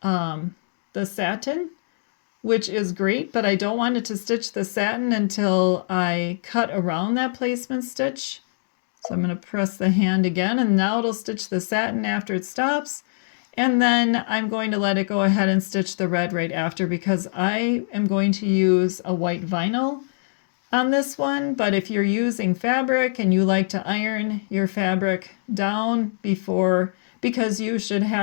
the satin, which is great, but I don't want it to stitch the satin until I cut around that placement stitch. So I'm going to press the hand again, and now it'll stitch the satin after it stops. And then I'm going to let it go ahead and stitch the red right after because I am going to use a white vinyl on this one. But if you're using fabric and you like to iron your fabric down before, because you should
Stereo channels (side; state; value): right; silent; digital silence